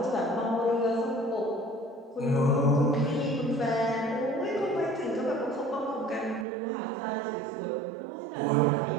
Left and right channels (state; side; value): drops out; left; at 6.5 s